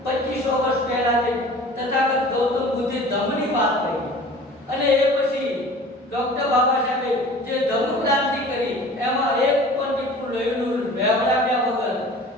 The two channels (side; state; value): both; normal; correlation 0.44